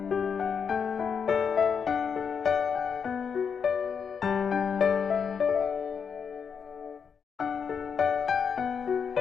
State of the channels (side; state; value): right; quieter; 6.6 dB